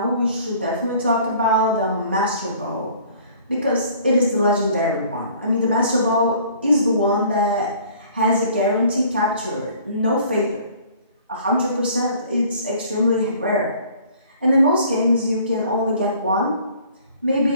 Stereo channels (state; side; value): inverted; both; correlation -0.53